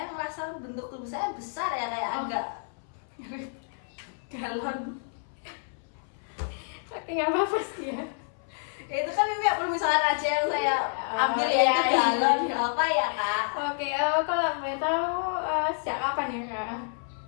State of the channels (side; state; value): right; silent; 59 dB below the other